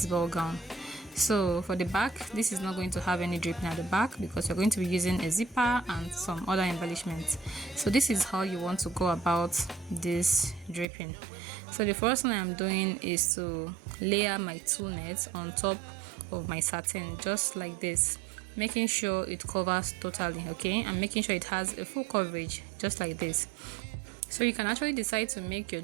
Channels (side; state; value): left; drops out; at 10.9 s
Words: ball gown. So for the back, this is not going to have any draping at the back because you're going to be using a zipper and some other embellishments. So this is how you want to go about this draping. So the first thing I'm doing is to layer my tulle net on top of my satin, just like this, making sure it covers totally, okay, and making sure it has a full coverage, just like this. So you can actually decide to make your